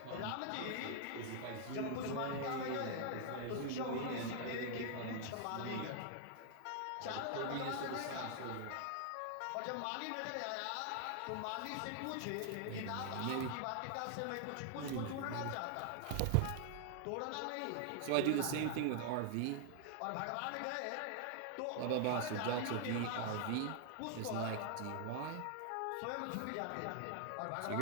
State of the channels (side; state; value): both; different; correlation 0.00